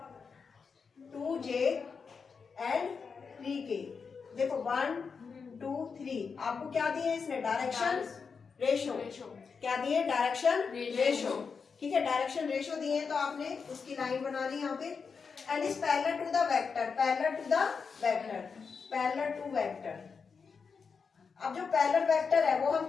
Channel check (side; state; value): right; quieter; 5.5 dB